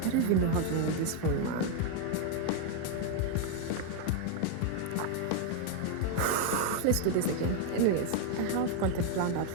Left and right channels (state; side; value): different; both; correlation 0.00